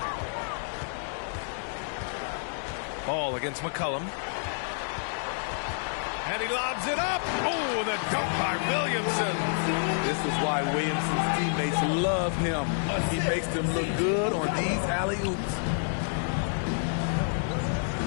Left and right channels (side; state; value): right; silent; digital silence